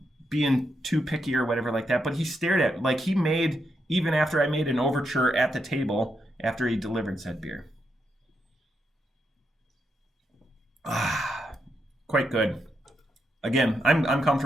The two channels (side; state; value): both; normal; correlation 0.82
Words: being too picky or whatever like that. But he stared at like he made even after I made an overture at the table after he delivered said beer. Quite good. Again, I'm